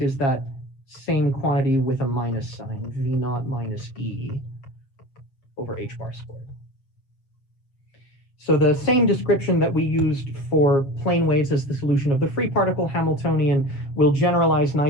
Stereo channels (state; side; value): late; right; 7.5 ms